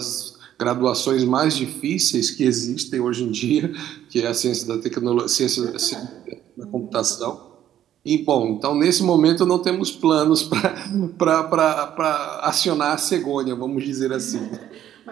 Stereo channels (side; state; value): left; quieter; 11.3 dB